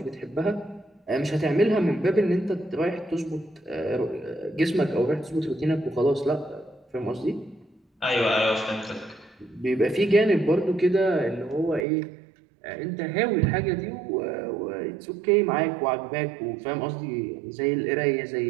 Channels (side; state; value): left; drops out; at 11.9 s